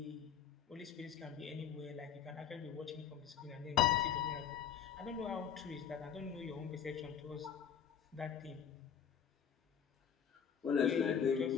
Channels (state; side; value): quieter; right; 8.2 dB